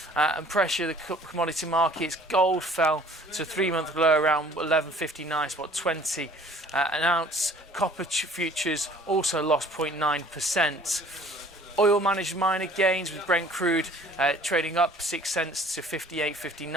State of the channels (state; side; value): normal; both; correlation 0.52